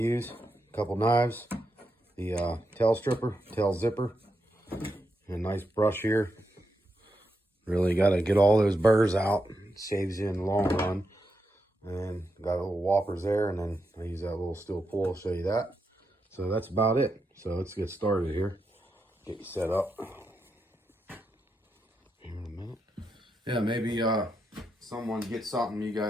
a couple knives, the tail stripper, tail zipper, and a nice brush here. Really got to get all those burrs out. It saves you in the long run. And got a little whoppers there, and then I use that little steel pull. I'll show you that. So that's about it. So let's get started here. Get you set up. Here in a minute. Yeah, maybe someone gets something you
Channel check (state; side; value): normal; both; correlation 0.84